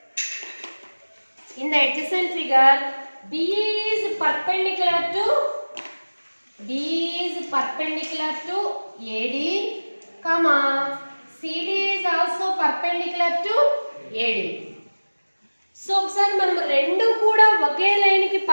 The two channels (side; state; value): both; inverted; correlation -1.00